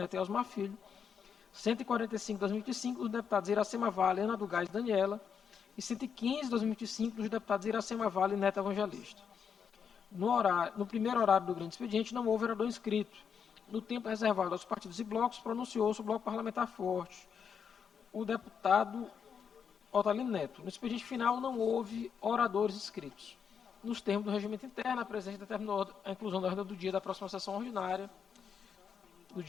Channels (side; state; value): right; quieter; 7.0 dB